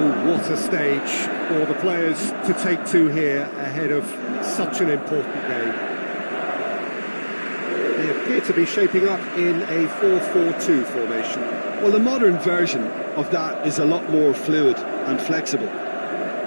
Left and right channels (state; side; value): inverted; both; correlation -1.00